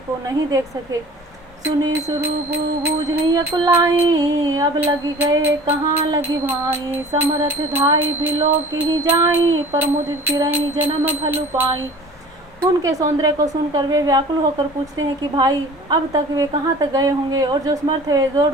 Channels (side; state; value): both; normal; correlation 0.44